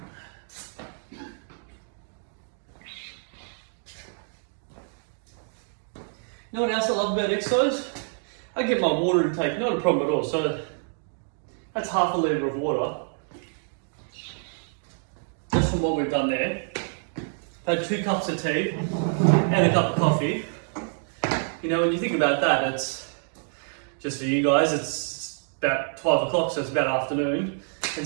know what else I love about exercise? I get my water intake, not a problem at all. So that's half a litre of water. Just from what we've done there. I've had 2 cups of tea and a cup of coffee. You know, when you think about that, it's just for you guys, it's about 12 o'clock, so it's about afternoon.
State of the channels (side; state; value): left; silent; 60 dB below the other